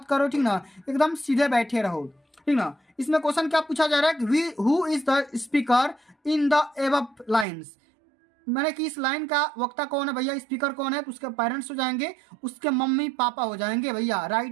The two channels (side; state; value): left; drops out; at 7.5 s